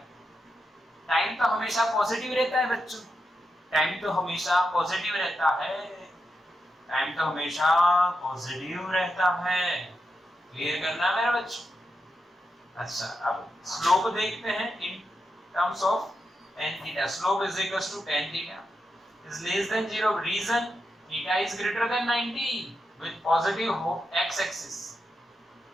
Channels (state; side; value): normal; both; correlation 0.86